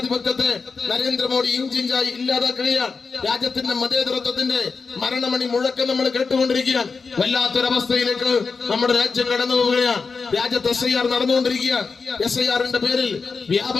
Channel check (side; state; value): right; quieter; 4.8 dB